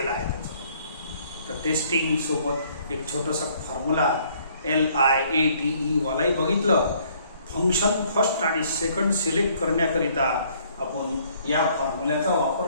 आहे त्याचा. तर टेस्टिंग सोबत एक छोटासा फॉर्म्युला LIATE वालाही बघितलं. फंक्शन फर्स्ट आणि सेकंड सिलेक्ट करण्याकरिता आपण या फॉर्म्युल्याचा वापर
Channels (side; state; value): both; inverted; correlation -0.62